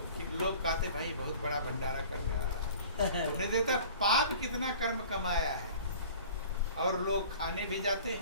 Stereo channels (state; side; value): inverted; both; correlation -0.45